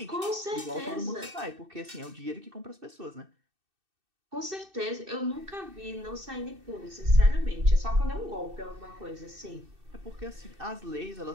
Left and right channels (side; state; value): left; late; 2.6 ms